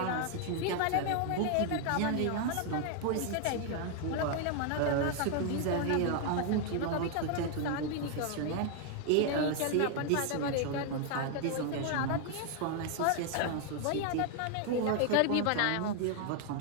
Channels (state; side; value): different; both; correlation 0.00